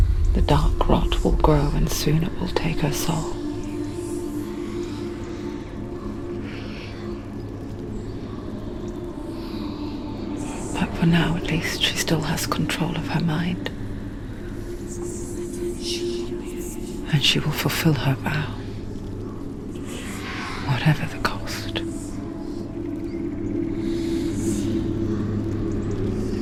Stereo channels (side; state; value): both; identical; correlation 1.00